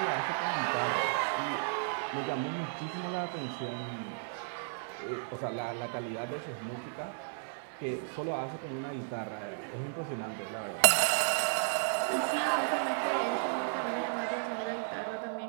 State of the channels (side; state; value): left; silent; digital silence